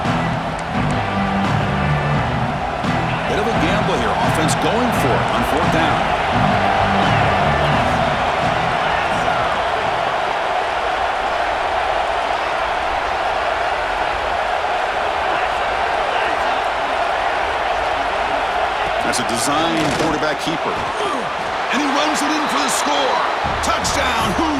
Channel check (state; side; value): identical; both; correlation 1.00